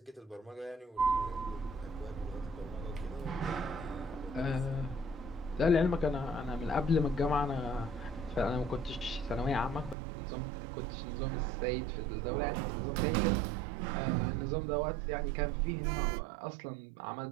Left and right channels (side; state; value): left; drops out; at 10.0 s